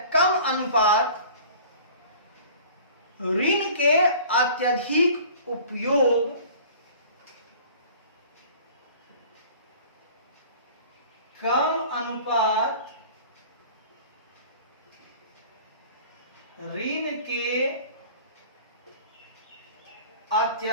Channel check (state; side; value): inverted; both; correlation -0.45